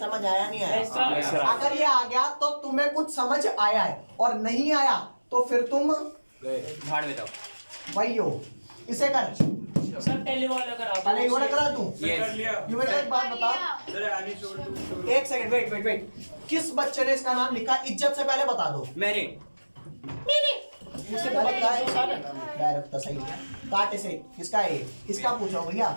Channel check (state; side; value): inverted; both; correlation -1.00